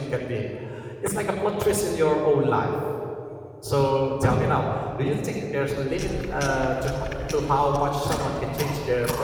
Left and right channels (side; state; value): both; identical; correlation 1.00